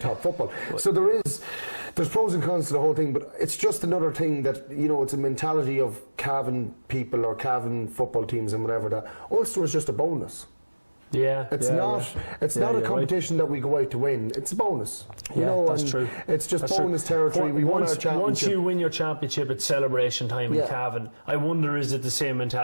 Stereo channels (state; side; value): inverted; both; correlation -1.00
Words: football. So there's pros and cons to the whole thing, but it's just another thing that, it's a mentality of Cavan people or Cavan football teams and whatever, that Ulster is just a bonus. It's not a competition that we go out to win. It's a bonus. That's true. It's just bonus territory. We won our championship. Once you win your championship, it's celebration time in Cavan. I wonder, is it the same